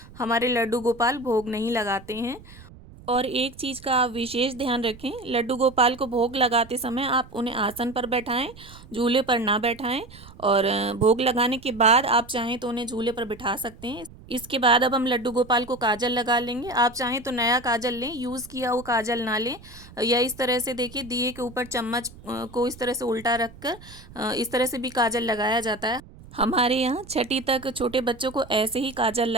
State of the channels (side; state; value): right; noise; rumble, 20 dB below the sound